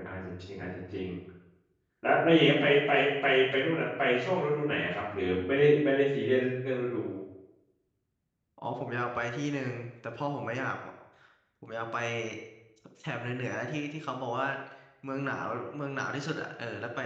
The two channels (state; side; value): identical; both; correlation 1.00